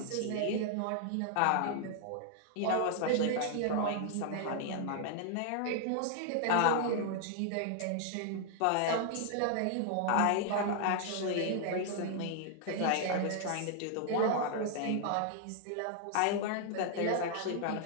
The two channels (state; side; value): different; both; correlation 0.00